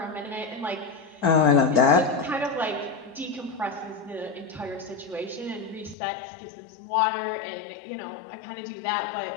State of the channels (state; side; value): drops out; right; at 6.0 s